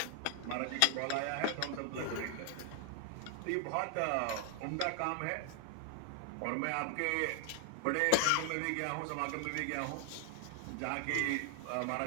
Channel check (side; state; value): both; different; correlation 0.00